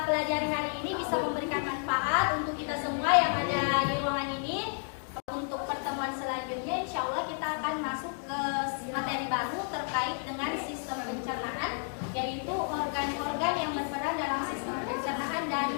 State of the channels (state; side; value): silent; right; 57 dB below the other